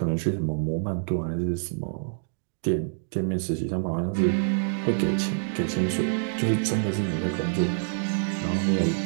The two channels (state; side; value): silent; left; digital silence